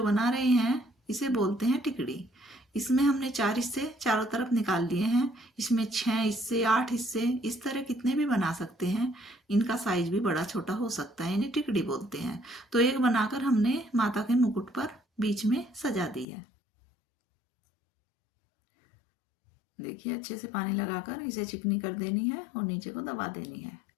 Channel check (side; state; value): right; drops out; at 16.2 s